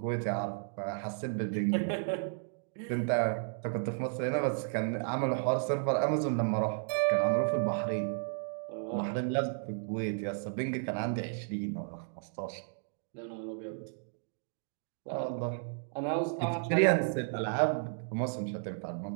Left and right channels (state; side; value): silent; left; digital silence